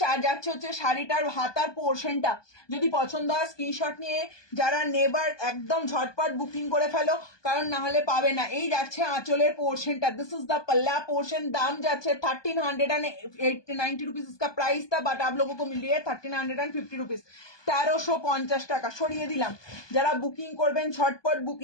যাচ্ছে হচ্ছে শাড়িটার হাতার পোর্শনটা। যদি পছন্দ হয় স্ক্রিনশট নিয়ে যারা নেবার একদম ঝটপট বুকিং করে ফেলো, কারণ না হলে পাবে না। এই যাচ্ছে আঁচলের পোর্শনটা, দিস इज द पल्ला पोर्शन। दाम যাচ্ছে 1390 रुपीज इसका प्राइस था, बट आप लोगों को मिल रही है 1350 रुपीज, 1350 টাকা। সরিয়ে দিলাম। যারা বুকিং করবেন ঝটপট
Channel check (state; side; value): late; right; 1.2 ms